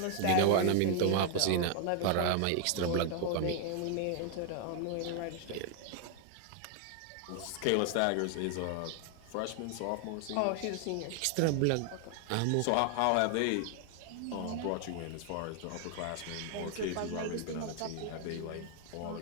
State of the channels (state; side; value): different; both; correlation 0.00